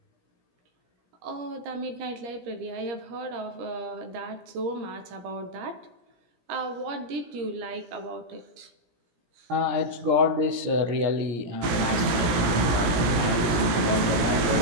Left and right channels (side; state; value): left; late; 17 ms